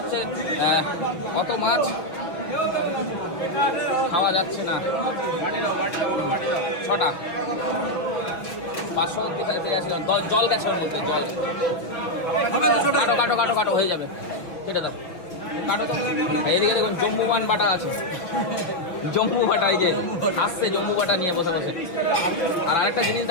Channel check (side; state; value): right; late; 6.1 ms